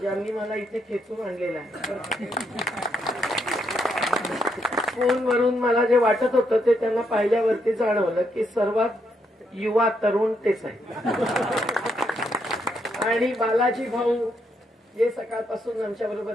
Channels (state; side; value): normal; both; correlation 0.77